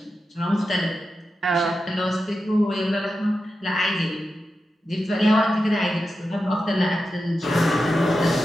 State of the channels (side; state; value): both; normal; correlation 0.90